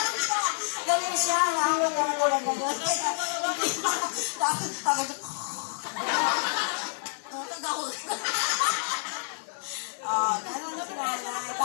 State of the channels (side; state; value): right; silent; 59 dB below the other